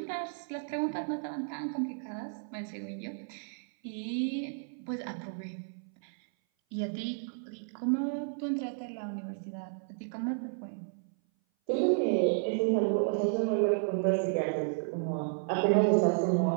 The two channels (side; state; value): left; silent; 56 dB below the other